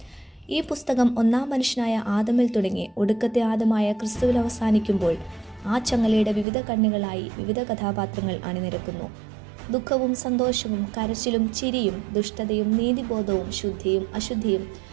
ഈ പുസ്തകം ഒന്നാം മനുഷ്യനായ ആദമിൽ തുടങ്ങി ഒടുക്കത്തെ ആദമായ ക്രിസ്തുവിൽ അവസാനിക്കുമ്പോൾ ആ ചങ്ങലയുടെ വിവിധ കണ്ണുകളായി വിവിധ കഥാപാത്രങ്ങൾ അണിനിരക്കുന്നു. ദുഃഖവും സന്തോഷവും കരച്ചിലും ചിരിയും ദുഷ്ടതയും നീതിബോധവും ശുദ്ധിയും അശുദ്ധിയും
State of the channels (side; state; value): left; drops out; at 6.5 s